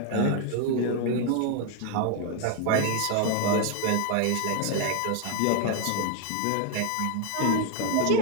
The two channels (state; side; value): different; both; correlation 0.01